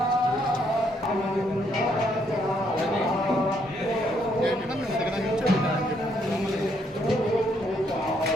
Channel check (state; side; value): normal; both; correlation 0.72